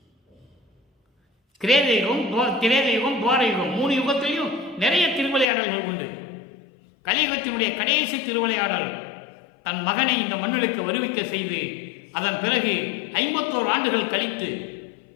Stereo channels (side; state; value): right; drops out; at 5.5 s